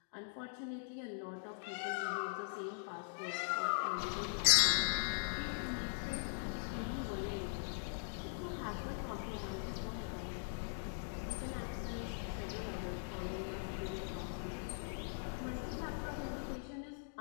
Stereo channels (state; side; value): silent; right; digital silence